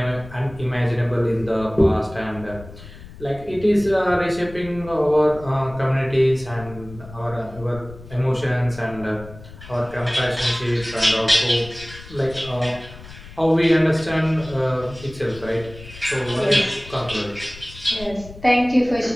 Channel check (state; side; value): noise; left; rumble, 17 dB below the sound